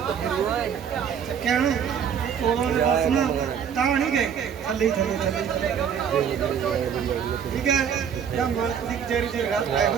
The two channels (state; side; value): quieter; left; 7.8 dB